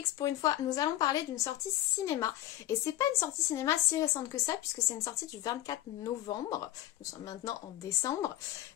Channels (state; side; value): quieter; right; 13.9 dB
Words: pour une fois, nous allons parler d'une sortie cinéma. Et c'est pas une sortie cinéma si récente que ça puisque c'est une sortie du 24 novembre. Nous sommes maintenant en décembre.